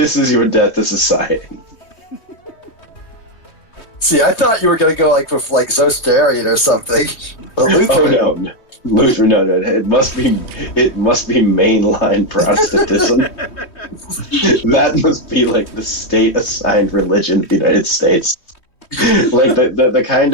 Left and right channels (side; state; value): right; late; 3.1 ms